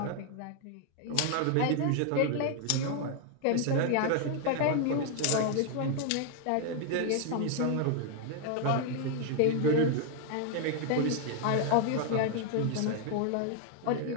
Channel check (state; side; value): different; both; correlation 0.00